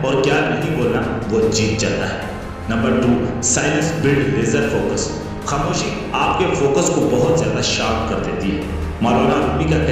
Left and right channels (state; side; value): identical; both; correlation 1.00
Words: और क्या नहीं बोलना, वो जीत जाता है। Number 2, silence build laser focus. खामोशी आपके फोकस को बहुत ज्यादा शार्प कर देती है। मौलाना रूमी का